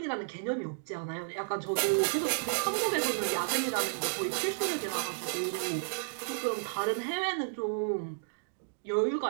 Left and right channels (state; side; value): silent; left; digital silence